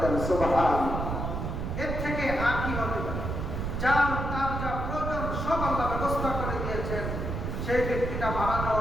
দেন। সুবহানাল্লাহ। এর থেকে আর কি হবে? তার যা প্রয়োজন সব আল্লাহ ব্যবস্থা করে দিয়েছেন। সেই ব্যক্তিটা মারা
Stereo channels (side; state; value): right; noise; rumble, 3 dB below the sound